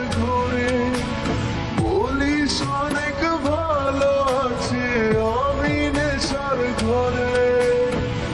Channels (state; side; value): identical; both; correlation 1.00